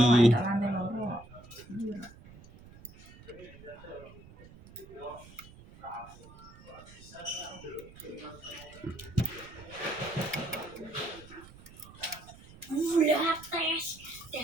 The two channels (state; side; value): noise; right; rumble, 20 dB below the sound